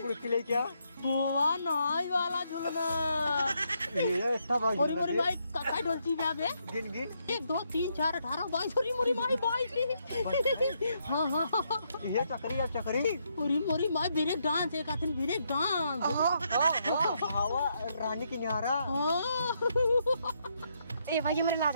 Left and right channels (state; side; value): inverted; both; correlation -0.77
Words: बुड़की ले क्या बुआ नाई वाला झूलना ये सब मोरी मोरी भाई काका ढोलची में आबे गिन गिन 1 2 3 4 18 22 मोरी मोरी भाई 22 हाँ हाँ ये चक्री अब चक्री मोरी मोरी भाई ब्रेक डांस एक आथन ब्रेक डांस हवा रानी की न्यारा ए भैया मेरे लाज